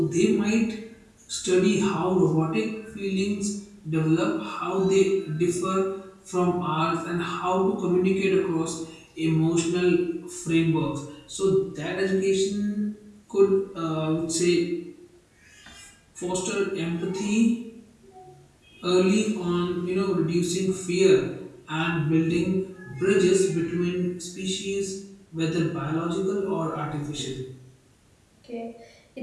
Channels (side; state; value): both; identical; correlation 1.00